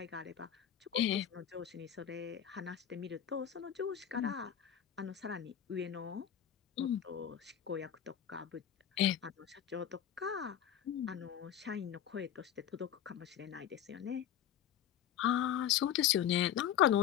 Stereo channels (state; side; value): quieter; right; 9.8 dB